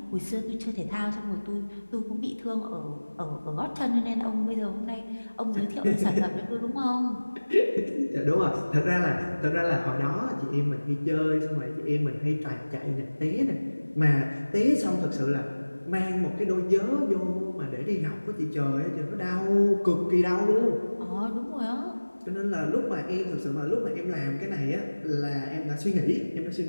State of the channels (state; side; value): inverted; both; correlation -1.00